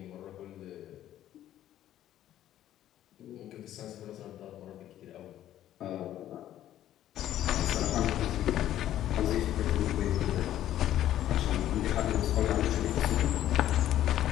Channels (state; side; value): quieter; right; 12.4 dB